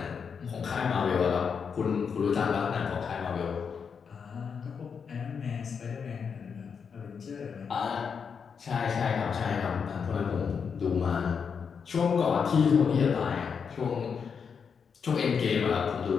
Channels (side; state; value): right; quieter; 6.3 dB